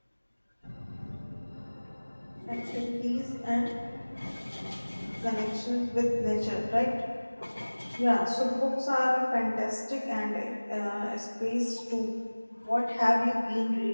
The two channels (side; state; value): both; inverted; correlation -1.00